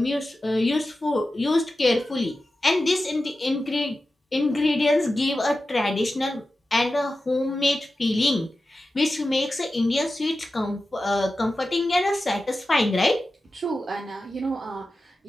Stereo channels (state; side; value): normal; both; correlation 0.93